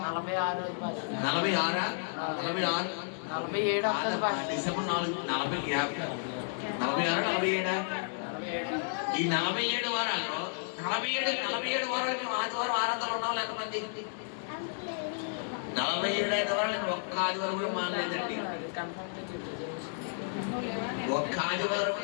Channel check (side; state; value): right; silent; digital silence